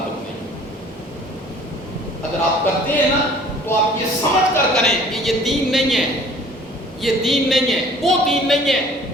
نہیں۔ اگر آپ کرتے ہیں نا تو آپ یہ سمجھ کر کریں کہ یہ دین نہیں ہے، یہ دین نہیں ہے، وہ دین نہیں ہے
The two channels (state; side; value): normal; both; correlation 0.52